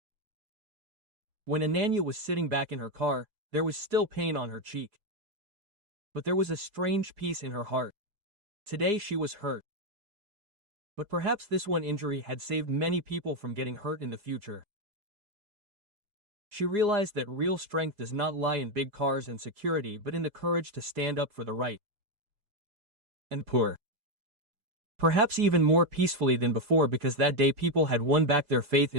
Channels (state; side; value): late; left; 4.8 ms